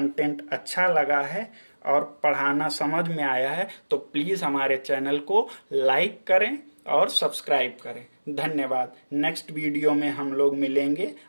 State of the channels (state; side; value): inverted; both; correlation -1.00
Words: अच्छा लगा है और पढ़ाना समझ में आया है तो प्लीज हमारे चैनल को लाइक करें और सब्सक्राइब करें। धन्यवाद। नेक्स्ट वीडियो में हम लोग मिलेंगे